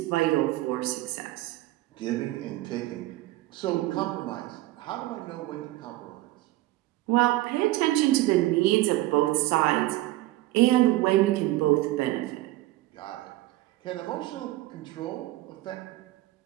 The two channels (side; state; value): left; quieter; 17.1 dB